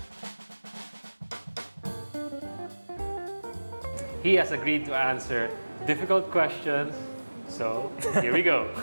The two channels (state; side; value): inverted; both; correlation -1.00